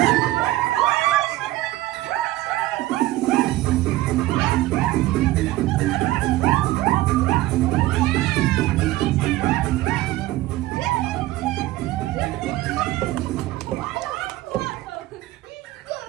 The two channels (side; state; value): left; quieter; 16.9 dB